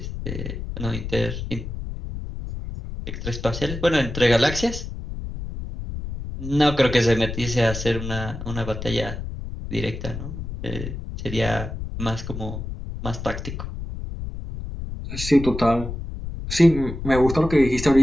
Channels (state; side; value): noise; left; rumble, 7 dB below the sound